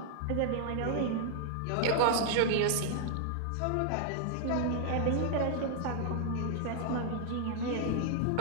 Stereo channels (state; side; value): different; both; correlation 0.00